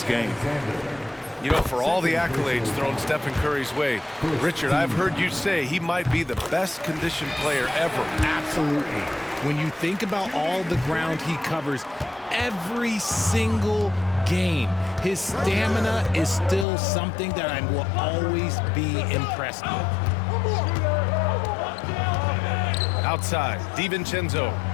game. You know, for all the accolades thrown Stephen Curry's way, Richard, I've heard you say he might be the best conditioned player ever. Absolutely. When you think about all the ground he covers every single game, his stamina is still something that I will always be impressed with. Outside, DiVincenzo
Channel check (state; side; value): drops out; right; at 16.7 s